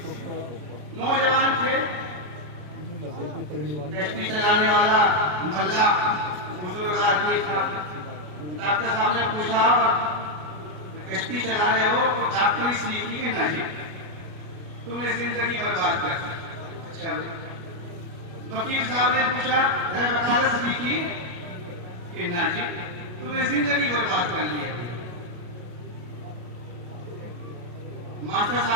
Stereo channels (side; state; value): left; late; 34 ms